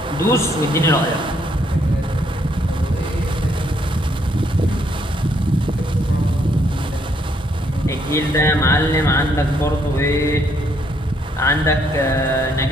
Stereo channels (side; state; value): both; normal; correlation 0.71